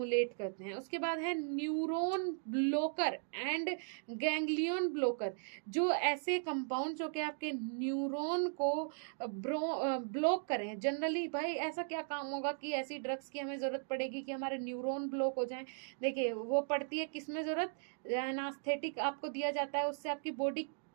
करते हैं। उसके बाद है neuron blocker and ganglion blocker, जो ऐसे कंपाउंड जो कि आपके न्यूरॉन को ब्लॉक करें। जनरली भाई ऐसा क्या काम होगा कि ऐसी ड्रग्स की हमें जरूरत पड़ेगी कि हमारे न्यूरॉन ब्लॉक हो जाएं? देखिए वो पड़ती है किसमें जरूरत, एनास्थेटिक आपको दिया जाता है, उससे आपकी बॉडी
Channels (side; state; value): left; silent; digital silence